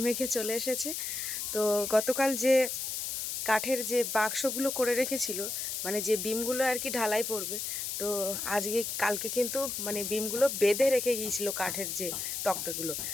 মেখে চলে এসেছে। তো গতকাল যে কাঠের যে বাক্সগুলো করে রেখেছিল, মানে যে বিমগুলো আর কি ঢালাই পড়বে, তো কালকে কিন্তু মানে বিমগুলো বেঁধে রেখে গিয়েছিল কাঠের যে তক্তাগুলো,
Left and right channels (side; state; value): left; noise; hiss, 3 dB below the sound